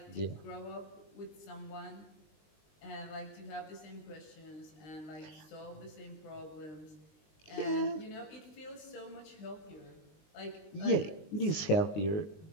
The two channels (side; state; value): right; late; 19 ms